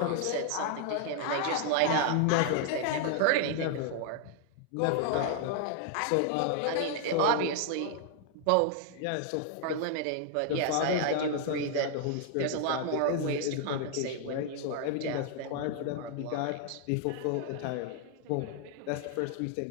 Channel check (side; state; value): both; different; correlation 0.00